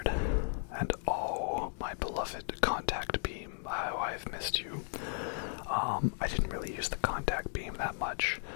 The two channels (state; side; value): silent; right; digital silence